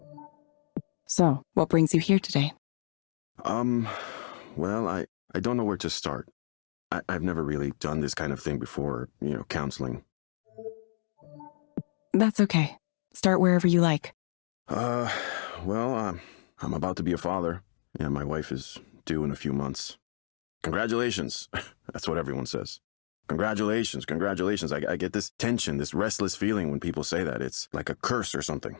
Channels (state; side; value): silent; right; digital silence